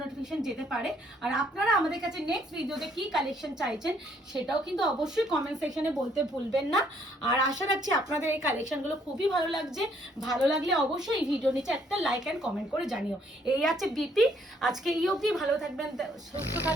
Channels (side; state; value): both; normal; correlation 0.67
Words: নোটিফিকেশন যেতে পারে। আর আপনারা আমাদের কাছে নেক্সট ভিডিওতে কি কালেকশন চাইছেন সেটাও কিন্তু অবশ্যই কমেন্ট সেকশনে বলতে ভুলবেন না। আর আশা রাখছি আপনাদের এই কালেকশনগুলো খুবই ভালো লাগছে। ভালো লাগলে অবশ্যই এই ভিডিও নিচে একটা লাইক এন্ড কমেন্ট করে জানিও। এই আছে বিপি। আজকে এই অবধি, ভালো থাকবেন, সুস্থ